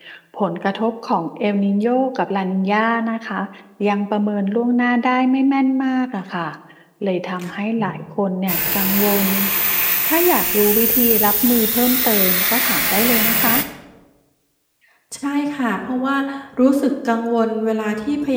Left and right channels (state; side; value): identical; both; correlation 1.00